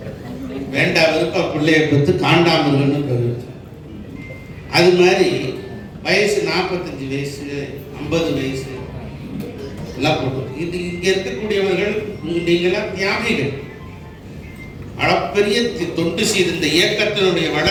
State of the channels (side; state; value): both; identical; correlation 1.00